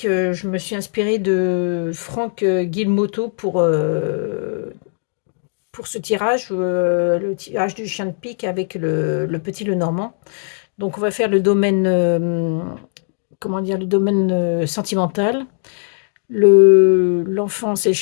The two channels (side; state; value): right; silent; digital silence